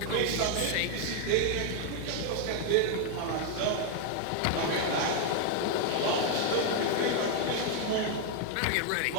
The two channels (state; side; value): different; both; correlation 0.00